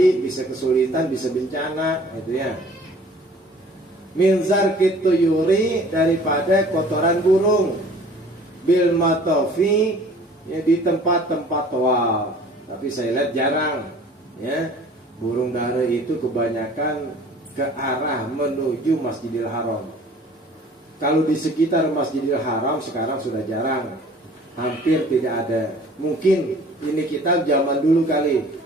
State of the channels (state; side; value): normal; both; correlation 0.50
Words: bisa kesulitan, bisa bencana, itu ya. Min zarkit tuyuri, daripada kotoran burung, bil matofi, ya, di tempat-tempat tawaf. Tapi saya lihat jarang, ya, burung dara itu kebanyakan ke arah menuju Masjidil Haram. Kalau di sekitar Masjidil Haram sekarang sudah jarang, hampir tidak ada. Mungkin ini kitab zaman dulu kali.